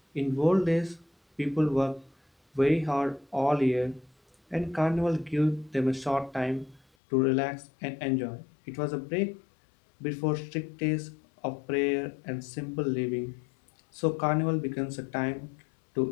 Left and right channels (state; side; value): drops out; right; at 6.8 s